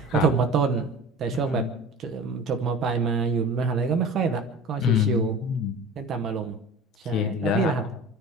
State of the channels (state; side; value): normal; both; correlation 0.38